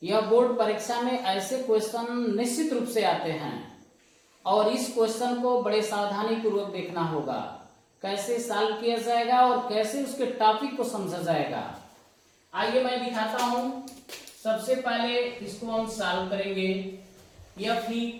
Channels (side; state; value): both; identical; correlation 1.00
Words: यह बोर्ड परीक्षा में ऐसे क्वेश्चन निश्चित रूप से आते हैं और इस क्वेश्चन को बड़े सावधानी पूर्वक देखना होगा, कैसे सॉल्व किया जाएगा और कैसे उसके टॉपिक को समझा जाएगा। आइए मैं दिखाता हूँ। सबसे पहले इसको हम सॉल्व करेंगे। यह